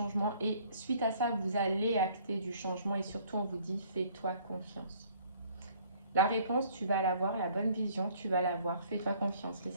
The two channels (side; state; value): both; inverted; correlation -0.58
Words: et suite à ça, vous allez acter du changement et surtout, on vous dit, fais-toi confiance. La réponse, tu vas l'avoir, la bonne vision, tu vas l'avoir. Fais-toi confiance, les